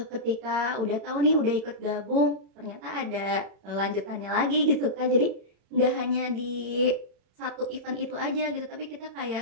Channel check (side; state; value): left; late; 31 ms